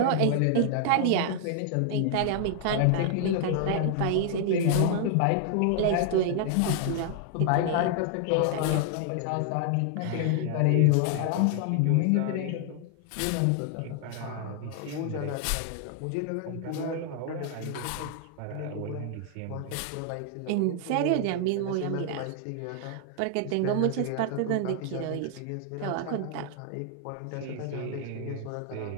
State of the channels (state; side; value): different; both; correlation 0.00